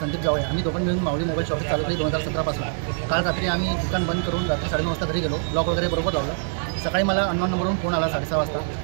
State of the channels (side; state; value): left; silent; digital silence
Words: संदीप जावळे आम्ही दोघं मिळून माऊली मोबाईल शॉप चालू केली 2017 पासून। काल रात्री आम्ही दुकान बंद करून रात्री 9:30 वाजता घरी गेलो, लॉक वगैरे बरोबर लावलं। सकाळी मला अननोन नंबरवरून फोन आला 6:30 वाजता।